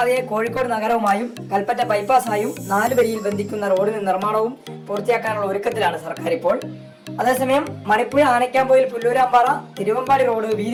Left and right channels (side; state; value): both; identical; correlation 1.00